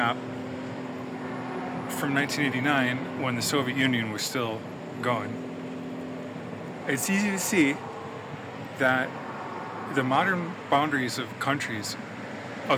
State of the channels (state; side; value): identical; both; correlation 1.00